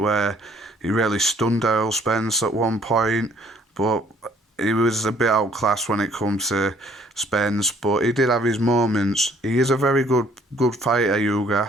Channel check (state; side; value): normal; both; correlation 0.61